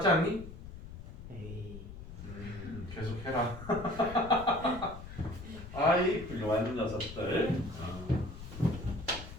않니? 에이. 계속 해라. 아이, 훌륭한 녀석들.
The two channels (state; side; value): noise; left; rumble, 12 dB below the sound